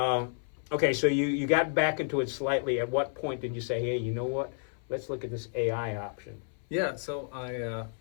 Okay, so you got back into it slightly. At what point did you say, hey, you know what? Let's look at this AI option. Yeah, so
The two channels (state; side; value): silent; right; 57 dB below the other